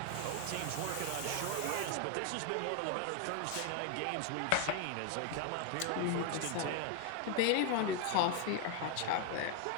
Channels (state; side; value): different; both; correlation 0.00